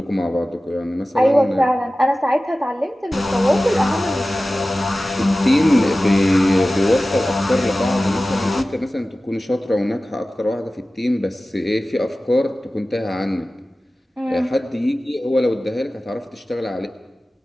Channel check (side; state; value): both; normal; correlation 0.96